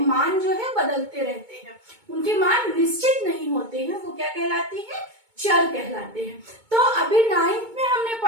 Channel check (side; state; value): left; late; 2.2 ms